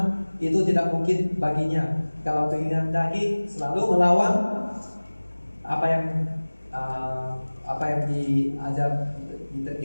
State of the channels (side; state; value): both; inverted; correlation -1.00